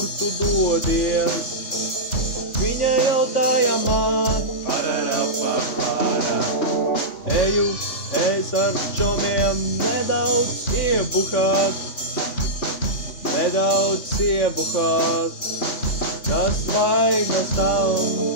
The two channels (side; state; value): right; late; 3.5 ms